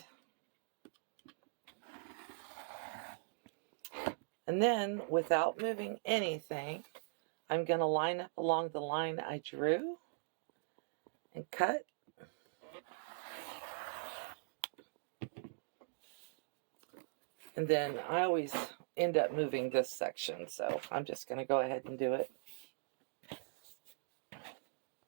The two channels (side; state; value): left; silent; digital silence